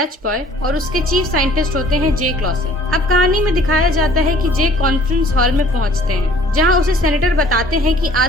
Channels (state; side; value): normal; both; correlation 0.54